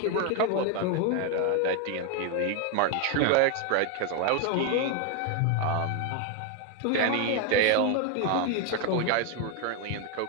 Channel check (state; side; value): different; both; correlation 0.01